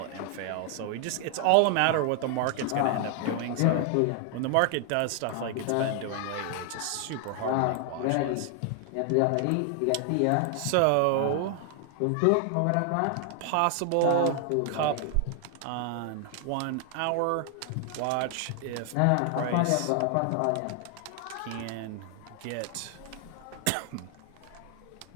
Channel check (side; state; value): both; different; correlation 0.00